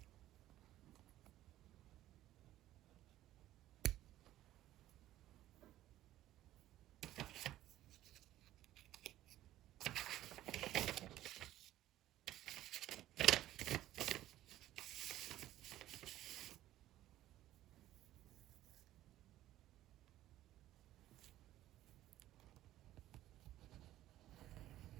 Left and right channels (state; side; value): quieter; left; 14.1 dB